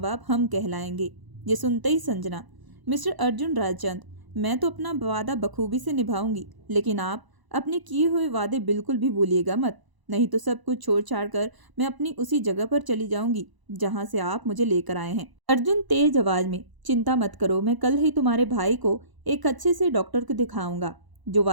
बाप हम कहलाएंगे। ये सुनते ही संजना, मिस्टर अर्जुन रायचंद, मैं तो अपना वादा बखूबी से निभाऊंगी, लेकिन आप अपने किए हुए वादे बिल्कुल भी भूलिएगा मत, नहीं तो सब कुछ छोड़ छाड़ कर मैं अपनी उसी जगह पर चली जाऊंगी जहां से आप मुझे लेकर आए हैं। अर्जुन तेज आवाज में, चिंता मत करो, मैं कल ही तुम्हारे भाई को एक अच्छे से डॉक्टर को दिखाऊंगा। जो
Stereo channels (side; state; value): left; late; 1.0 ms